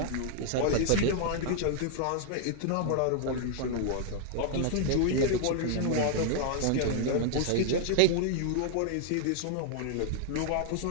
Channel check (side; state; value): both; different; correlation 0.00